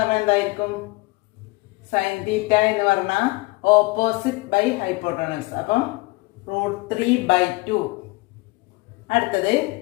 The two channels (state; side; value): quieter; right; 23.6 dB